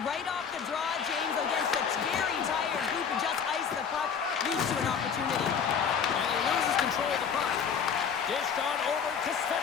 right off the draw, James, against a very tired group and just ice the puck, leads to an opportunity. And he loses control of the puck. Dished on over to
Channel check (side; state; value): right; quieter; 6.9 dB